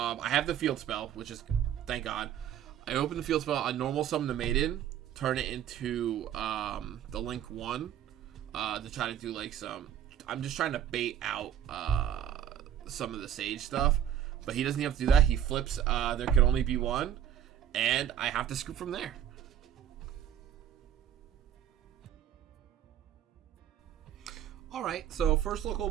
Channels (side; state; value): left; quieter; 10.3 dB